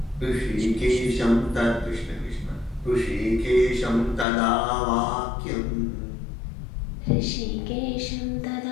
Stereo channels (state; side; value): drops out; right; at 4.2 s